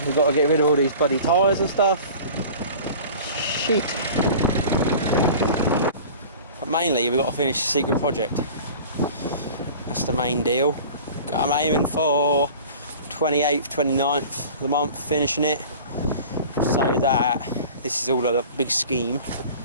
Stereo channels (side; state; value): both; inverted; correlation -0.41